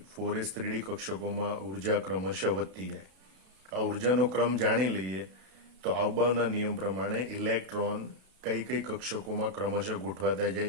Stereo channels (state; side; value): late; left; 32 ms